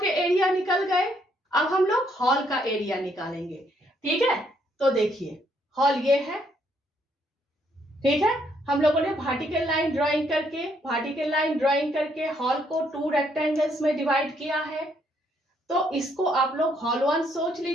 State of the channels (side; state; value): both; normal; correlation 0.71